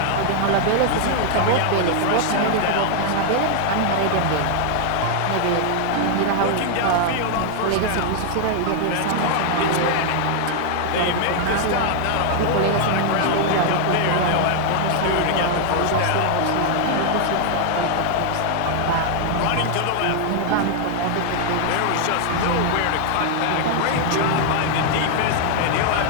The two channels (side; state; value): both; different; correlation 0.00